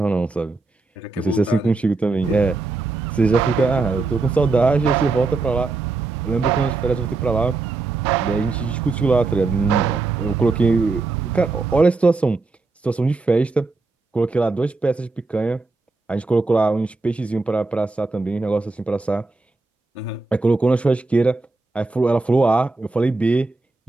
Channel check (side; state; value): left; quieter; 3.6 dB